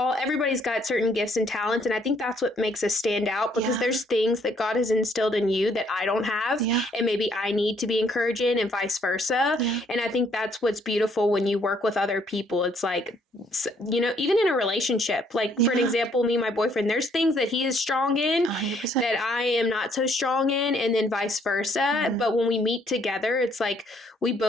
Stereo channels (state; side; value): normal; both; correlation 0.66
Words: everybody's got certain gifts and talents. And I think that's what makes us stand out, because there's things that God has instilled in you that I don't have. And maybe I need to be encouraged in, and vice versa. And I think that's what's beautiful when you work with other people. It's like even in a relationship, like for an example, me and my boyfriend, there's things that he is strong in 100%. that I am not so strong in, and then vice versa. But when we meet together, it's like we